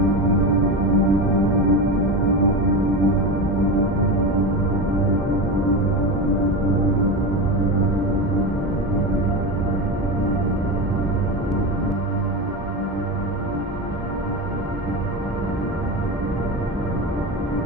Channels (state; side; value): normal; both; correlation 0.21